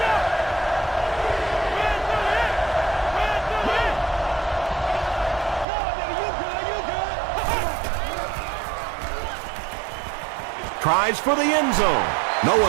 Tries for the end zone. No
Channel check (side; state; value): left; drops out; at 5.7 s